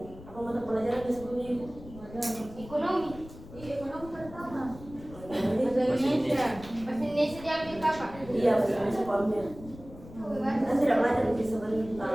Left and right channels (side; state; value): left; noise; rumble, 16 dB below the sound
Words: Apa mata pelajaran yang sebelumnya ibu? Ekonomi. Ekonomi pertama. Bahasa Indonesia. Bahasa Indonesia diambil kapan? Iya, masih sekolahnya. Kan tidak belajar lebih